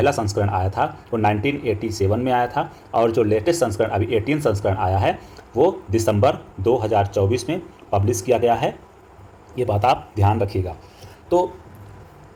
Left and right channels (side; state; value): both; identical; correlation 1.00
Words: संस्करण आया था वो 1987 में आया था और जो लेटेस्ट संस्करण अभी 18 संस्करण आया है वो दिसंबर 2024 में पब्लिश किया गया है। ये बात आप ध्यान रखिएगा। तो